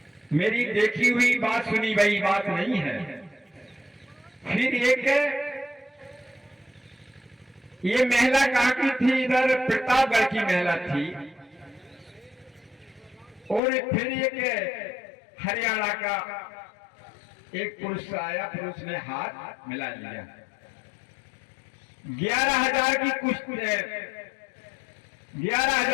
मेरी देखी हुई बात, सुनी हुई बात नहीं है। फिर एक ये महिला कहाँ की थी? इधर प्रतापगढ़ की महिला थी। और फिर एक हरियाणा का एक पुरुष आया, पुरुष ने हाथ मिला लिया। 11,000 की कुश्ती,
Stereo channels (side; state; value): right; drops out; at 13.6 s